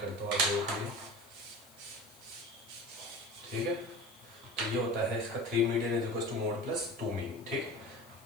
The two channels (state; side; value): noise; left; hiss, 23 dB below the sound